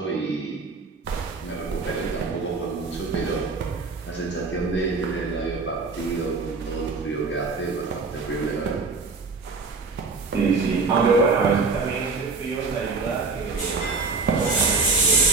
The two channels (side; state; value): left; quieter; 4.1 dB